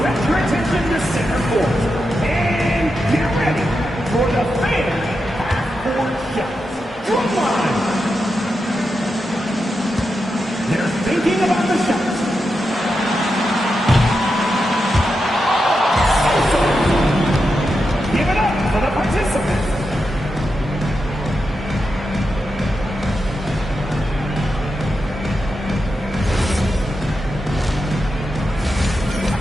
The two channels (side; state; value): both; normal; correlation 0.88